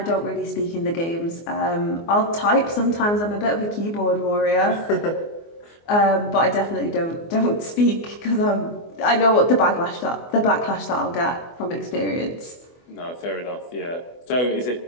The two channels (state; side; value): late; right; 24 ms